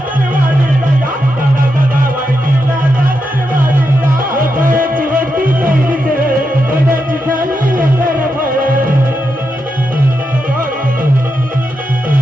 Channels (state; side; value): normal; both; correlation 0.85